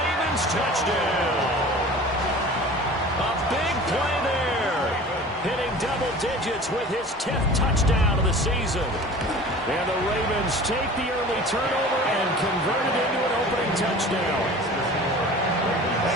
touchdown. A big play there. Hitting double digits with his 10th touchdown of the season. And the Ravens take the early turnover and convert it into an opening touchdown.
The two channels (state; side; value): normal; both; correlation 0.41